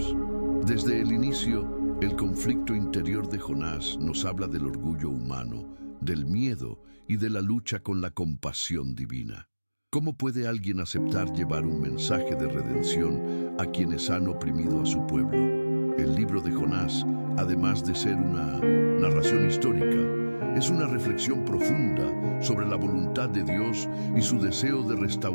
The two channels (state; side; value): inverted; both; correlation -1.00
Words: Desde el inicio, el conflicto interior de Jonás nos habla del orgullo humano, del miedo y de la lucha con la compasión divina. ¿Cómo puede alguien aceptar llevar un mensaje de redención a quienes han oprimido a su pueblo? El libro de Jonás, además de ser una narración histórica, es una reflexión profunda sobre la voluntad de Dios y su deseo de